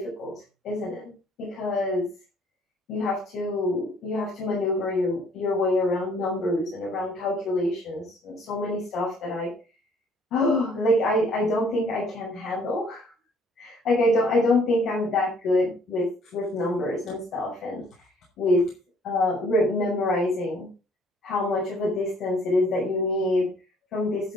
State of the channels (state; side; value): normal; both; correlation 0.60